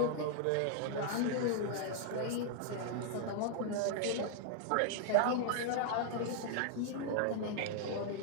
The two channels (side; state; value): both; different; correlation 0.00